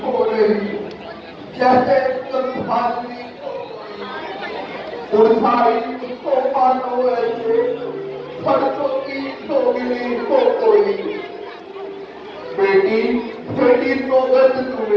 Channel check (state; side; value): identical; both; correlation 1.00